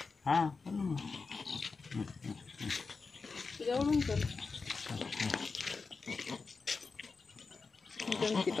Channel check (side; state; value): right; quieter; 4.5 dB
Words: हां जाऊन कर जमती